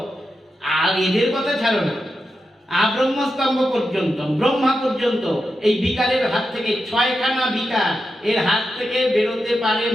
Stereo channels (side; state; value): both; normal; correlation 0.88